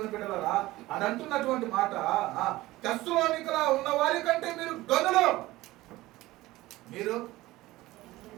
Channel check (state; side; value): quieter; left; 18.0 dB